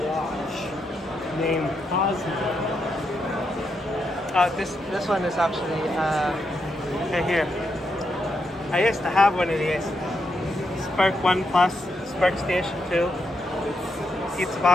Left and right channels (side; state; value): both; normal; correlation 0.82